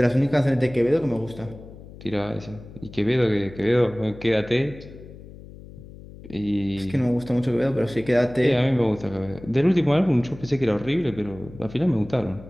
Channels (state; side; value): noise; left; hum, 17 dB below the sound